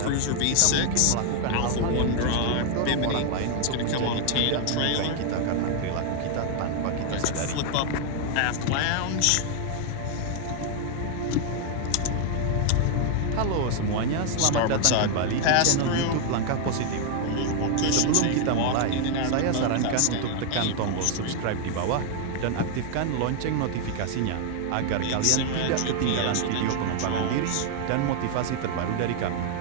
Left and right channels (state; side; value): different; both; correlation 0.00